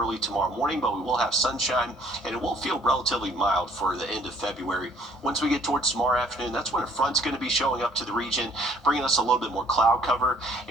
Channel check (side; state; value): both; normal; correlation 0.59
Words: tomorrow morning, but we will have sunshine, and it will feel relatively mild for the end of February. Once we get towards tomorrow afternoon, that's when a front's going to be showing up to the region, bringing us a little bit more cloud cover,